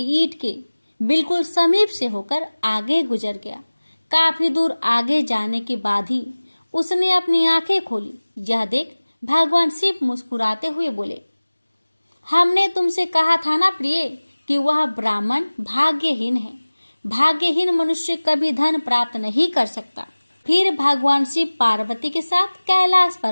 ईंट के बिल्कुल समीप से होकर आगे गुजर गया। काफी दूर आगे जाने के बाद ही उसने अपनी आंखें खोली। यह देख भगवान शिव मुस्कुराते हुए बोले, हमने तुमसे कहा था ना प्रिय कि वह ब्राह्मण भाग्यहीन है। भाग्यहीन मनुष्य कभी धन प्राप्त नहीं कर सकता। फिर भगवान शिव पार्वती के साथ कैलाश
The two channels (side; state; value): both; inverted; correlation -1.00